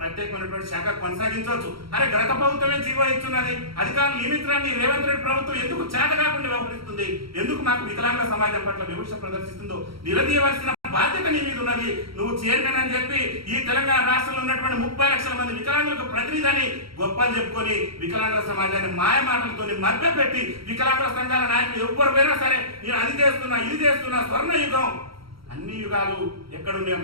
శాఖ కొనసాగించవచ్చు. అరే గత ప్రభుత్వమే జీవో ఇస్తున్నది, అధికారులు నియమించడాన్ని రేవంత్ రెడ్డి ప్రభుత్వం ఎందుకు చేత కాకుండా వ్యవహరిస్తుంది? ఎందుకు మాకు వికలాంగుల సమాజం పట్ల వివక్ష ప్రదర్శిస్తుందో నిలదీయవలసిన బాధ్యత నీ మీద ఉన్నది. నువ్వు చైర్మన్ అని చెప్పి ఈ తెలంగాణ రాష్ట్రంలో ఉన్నటువంటి 30 లక్షల మంది వికలాంగులకు ప్రతినిధిని గొప్పలు చెప్పుకొని వికలాంగుల సమాజాన్ని మాయ మాటలతో మభ్యపెట్టి వికలాంగుల సంఘాల నాయకులు ఎవ్వరు పోయినా సరే నేను అది చేస్తున్నా, ఇది చేస్తున్నా, స్వర్ణ యుగం, అన్ని యుగాలు ఎక్కడున్నాయో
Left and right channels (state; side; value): late; left; 0.75 ms